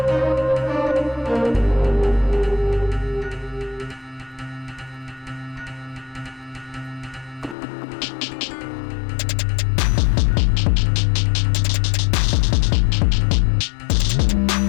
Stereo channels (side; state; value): right; drops out; at 7.6 s